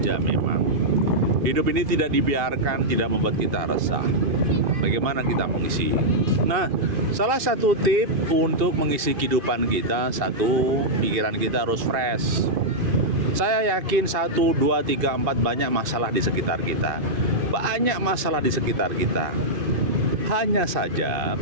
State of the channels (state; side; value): late; left; 2.5 ms